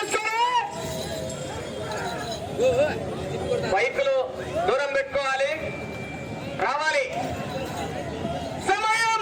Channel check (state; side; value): identical; both; correlation 1.00